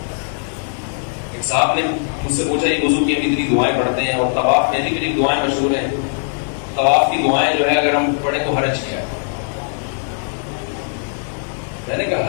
ایک صاحب نے مجھ سے پوچھا یہ وضو کی ہم اتنی دعائیں پڑھتے ہیں اور طواف میں ایسی میری دعائیں مشہور ہیں, طواف کی دعائیں جو ہے اگر ہم پڑھیں تو حرج کیا ہے؟ میں نے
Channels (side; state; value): right; silent; 58 dB below the other